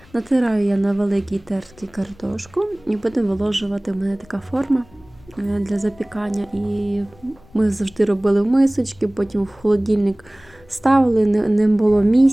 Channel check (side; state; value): left; noise; rumble, 26 dB below the sound